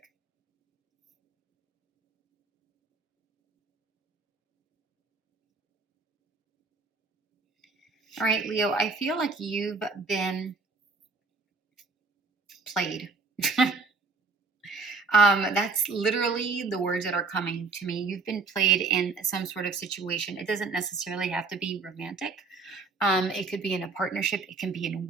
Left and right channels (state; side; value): quieter; left; 4.2 dB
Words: All right, Leo, I feel like you've been played. That's literally the words that are coming to me. You've been played in some sort of situation. It doesn't necessarily have to be romantic. It could be in a partnership. It can be in